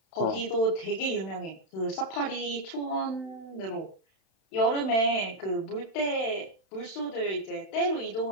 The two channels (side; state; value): right; late; 31 ms